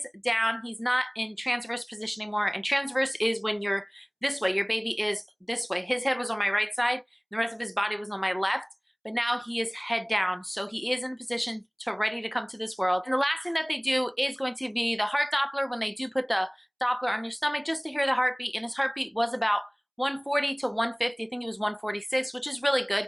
down. He's not in transverse position anymore. And transverse is when you're this way. Your baby is this way. His head was on my right side. The rest of his body was on my left. But now he is head down. So he is in a position to ready to come to this world. And the last thing that they do is going to be the heart Doppler, when they do put the Doppler on your stomach just to hear the heartbeat. And his heartbeat was about 140 to 150. I think it was 146, which is really good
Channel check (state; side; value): identical; both; correlation 1.00